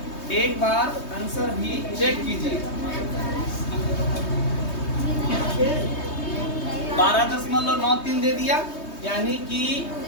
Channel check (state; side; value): late; right; 3.2 ms